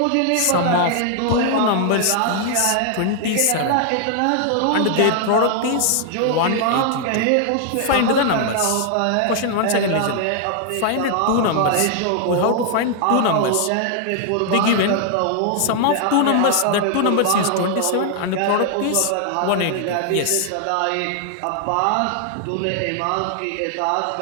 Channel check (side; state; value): both; different; correlation 0.00